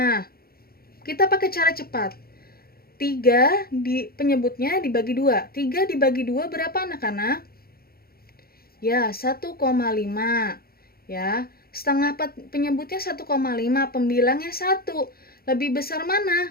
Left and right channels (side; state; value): right; late; 0.44 ms